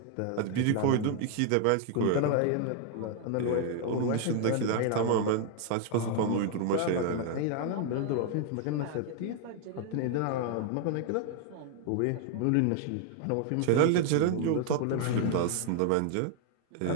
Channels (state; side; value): different; both; correlation 0.00